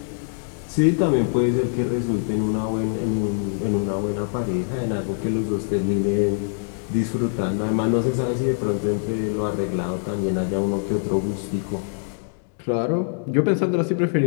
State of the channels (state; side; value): silent; right; digital silence